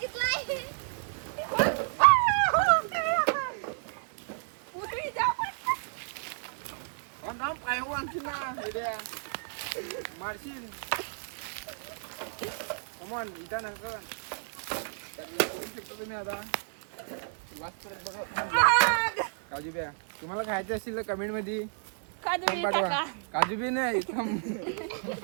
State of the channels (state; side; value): silent; left; digital silence